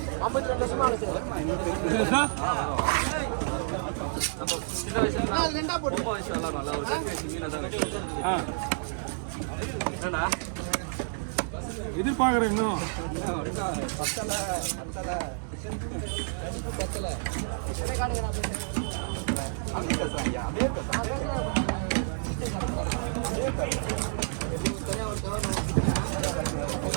52 வருஷமா ஆகுது. சின்ன வயசுல ரொம்ப வயசு எல்லாம் நல்லா ஒரு மீனை தான் என்னண்ணா எதிர்பார்க்குறேன். இன்னும்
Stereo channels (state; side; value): silent; left; 58 dB below the other